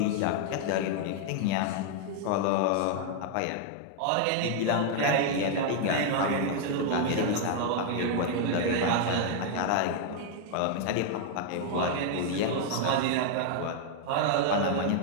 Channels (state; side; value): different; both; correlation 0.00